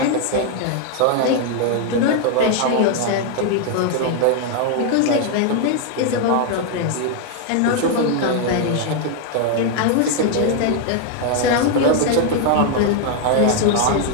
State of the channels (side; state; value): both; different; correlation 0.00